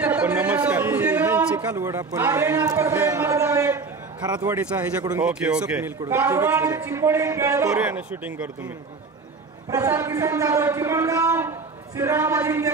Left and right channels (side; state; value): left; quieter; 4.3 dB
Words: नमस्कार। चिकालवड आपण खरातवाडीचा ह्याच्याकडून करूया ना शूटिंग करू तुम्ही। प्रसाद किसन जाधव चिमणगाव, श्रीराम अजिंक्य